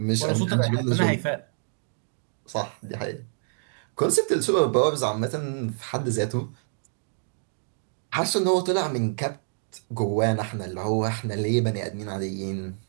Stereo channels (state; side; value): silent; left; digital silence